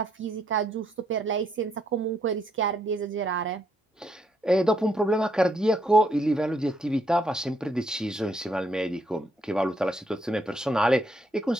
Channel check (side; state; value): both; normal; correlation 0.73